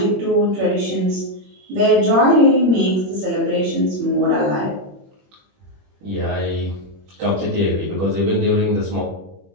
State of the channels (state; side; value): late; left; 21 ms